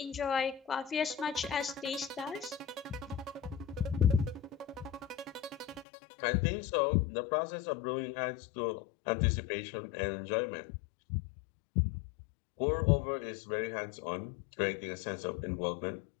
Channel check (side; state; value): right; drops out; at 5.9 s